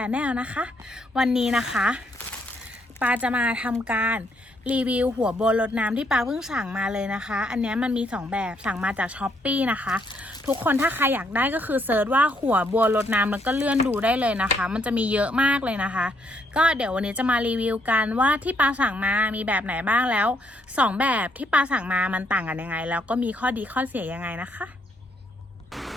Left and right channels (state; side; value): normal; both; correlation 0.72